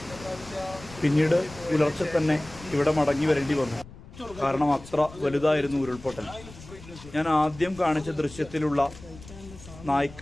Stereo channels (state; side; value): noise; left; rumble, 18 dB below the sound